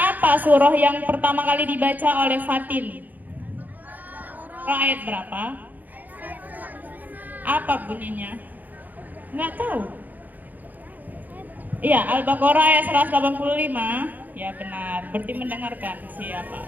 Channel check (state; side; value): late; left; 0.083 ms